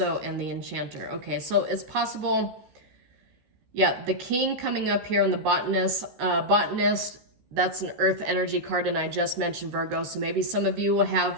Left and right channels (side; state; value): left; late; 14 ms